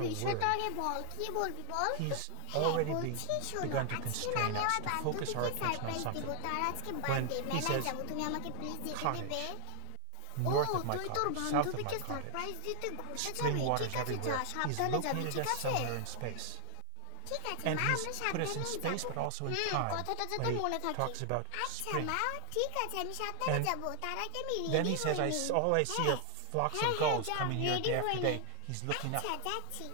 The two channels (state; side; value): different; both; correlation 0.00